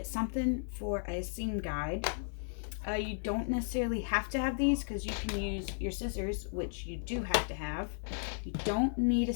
something for a seam guide. You don't necessarily have to have these, because you can use your scissors, which you do have to have. You don't need a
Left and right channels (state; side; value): silent; right; digital silence